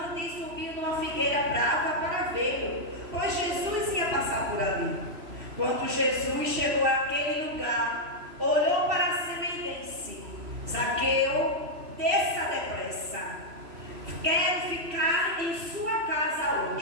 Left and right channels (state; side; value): late; left; 3.0 ms